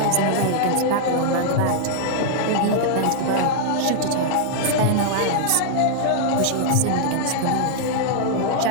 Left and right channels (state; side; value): different; both; correlation -0.01